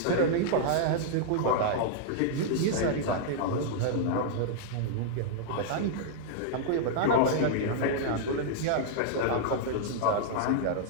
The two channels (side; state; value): both; different; correlation -0.01